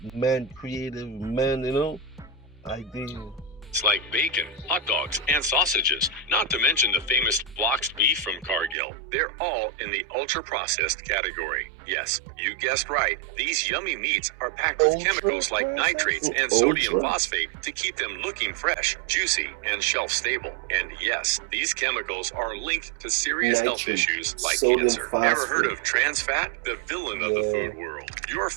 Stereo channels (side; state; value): left; drops out; at 8.8 s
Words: man-creative, idea. It's like bacon, hot dogs, and sausages, not to mention the famous boxed beef from Cargill. They're all in the ultra-processed category. Yes, you guessed right. These yummy meats are packed with chemicals like nitrates and sodium phosphate to keep them looking fresh, juicy, and shelf-stable. And yes, these chemicals are linked to serious health issues like cancer. Ever heard of trans fat? The villain of the food world. Your